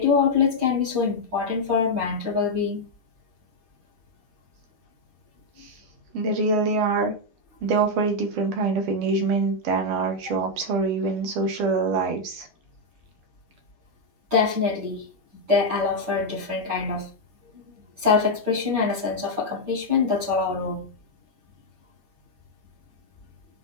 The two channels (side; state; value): left; late; 7.8 ms